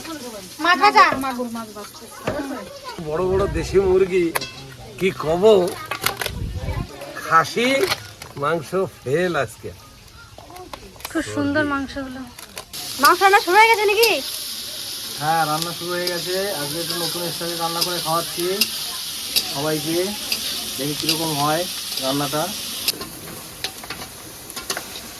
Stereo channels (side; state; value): both; identical; correlation 1.00